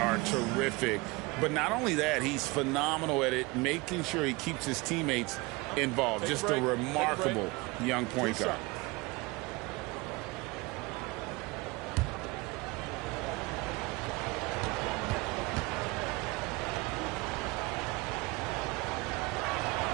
terrific. But not only that, he's phenomenal at it, making sure he keeps his teammates involved. Just a remarkable young point guard.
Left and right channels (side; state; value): left; quieter; 24.4 dB